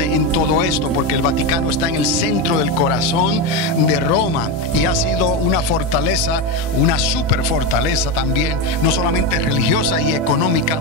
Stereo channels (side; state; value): both; normal; correlation 0.14